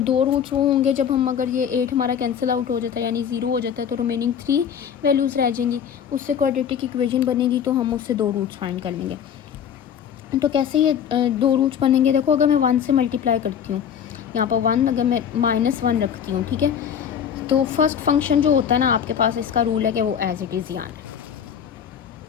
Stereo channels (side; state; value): right; quieter; 8.3 dB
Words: रूट्स वो होंगे जब हम, अगर ये 8 हमारा कैंसिल आउट हो जाता है यानी 0 हो जाता है, तो रिमेनिंग 3 वैल्यूज़ रह जाएंगी, उससे क्वाड्रेटिक इक्वेशन बनेगी, तो हम उससे 2 रूट्स फाइंड कर लेंगे। तो कैसे ये 2 रूट्स बनेंगे, देखो अगर मैं 1 से मल्टीप्लाई करती हूँ, यहाँ पर 1, अगर मैं -1 रखती हूँ, ठीक है, तो फर्स्ट फंक्शन जो होता है ना आपके पास, इसका रूल है कि वो एज इट इज़ ही आना है,